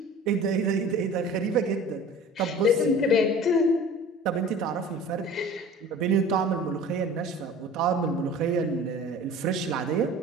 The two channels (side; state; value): both; normal; correlation 0.42